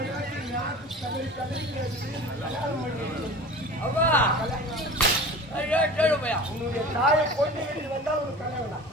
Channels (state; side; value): normal; both; correlation 0.38